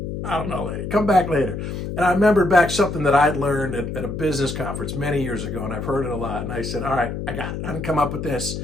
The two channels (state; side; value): noise; left; hum, 5 dB below the sound